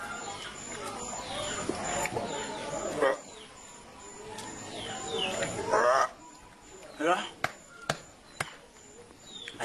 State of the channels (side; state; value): both; identical; correlation 1.00